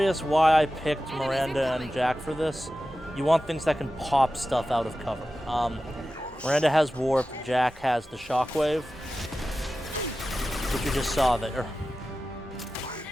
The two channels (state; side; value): normal; both; correlation 0.94